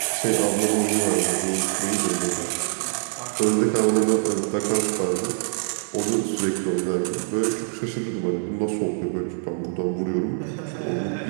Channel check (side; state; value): left; silent; 62 dB below the other